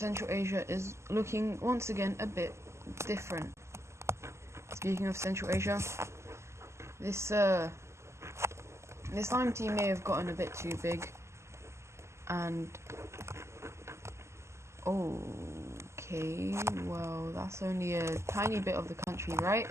Asia is looking once again a bit different. Speaking of Central Asia, this Lime team may have gotten a bit too big, and okay, well, that's only a tiny bit of the country, right?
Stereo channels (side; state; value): left; late; 0.13 ms